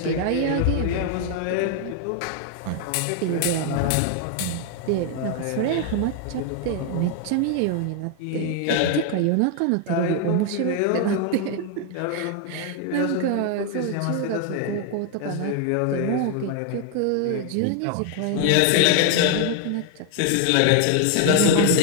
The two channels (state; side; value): different; both; correlation 0.00